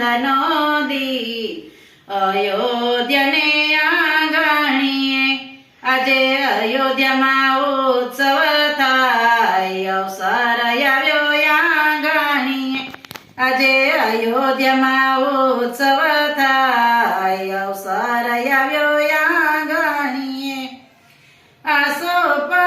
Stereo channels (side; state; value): both; identical; correlation 1.00